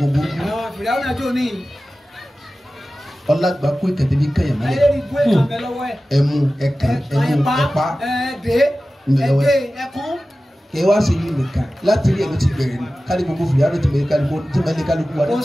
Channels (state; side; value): normal; both; correlation 0.95